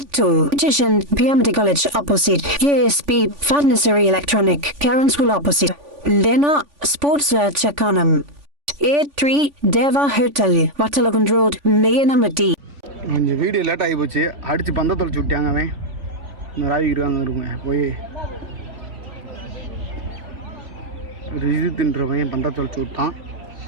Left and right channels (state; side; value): late; left; 3.5 ms